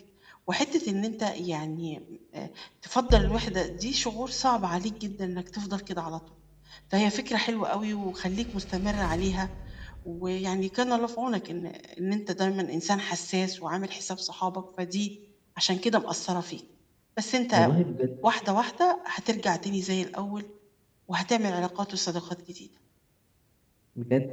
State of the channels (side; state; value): both; identical; correlation 1.00